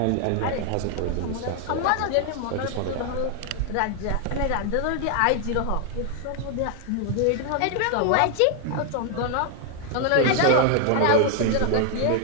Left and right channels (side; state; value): both; different; correlation 0.00